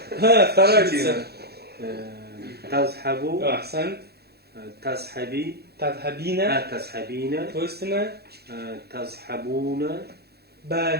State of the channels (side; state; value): left; late; 0.47 ms